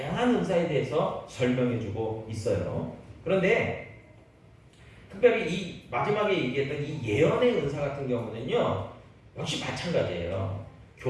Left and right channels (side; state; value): both; identical; correlation 1.00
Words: 은사에 대해서 설명해주고 있어요. 그런데 특별히 이 마지막에 얘기했던 이 예언의 은사 같은 경우는요, 역시 마찬가지예요.